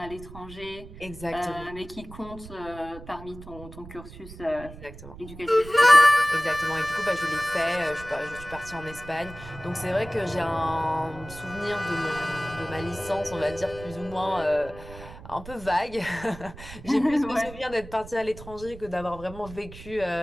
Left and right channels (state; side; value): noise; right; rumble, 15 dB below the sound